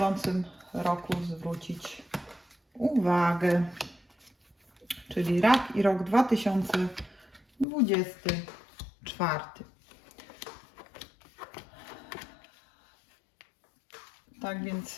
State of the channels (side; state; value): right; drops out; at 7.7 s